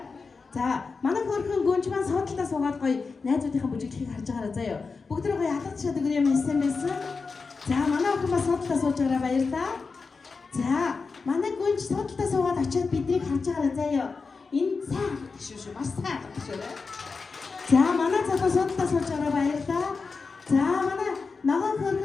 За манай хөрхөн гүнж маань суудлаа суугаад гоё найзуудынхаа бүжиглэхийг харж байгаарай заяа. Бүгдөө гоё алгад шат өгөр юм хэлсэн байсан. За манай охин бас суудлаа сууж байгаарай баярлалаа. За манай гүнж суудлаа суугаад очиод биднийг харж байгаарай заяа. Энэ сайн шүү маш сайн шүү. За манай цагаа суудлаа сууж байгаарай баярлалаа. За манай ногоон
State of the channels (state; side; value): quieter; right; 4.6 dB